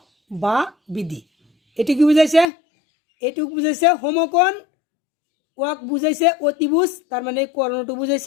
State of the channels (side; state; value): right; drops out; at 2.5 s